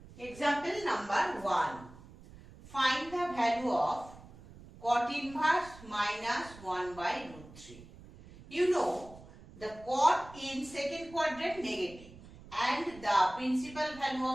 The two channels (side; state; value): right; noise; rumble, 19 dB below the sound